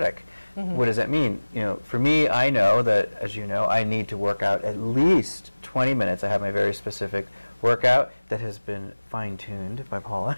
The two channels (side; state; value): both; inverted; correlation -1.00